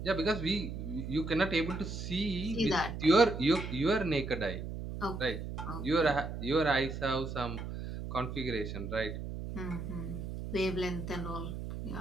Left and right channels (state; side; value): noise; right; hum, 6 dB below the sound